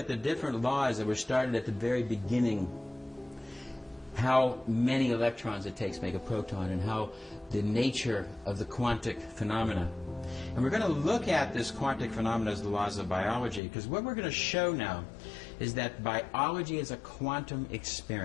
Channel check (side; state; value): right; drops out; at 13.6 s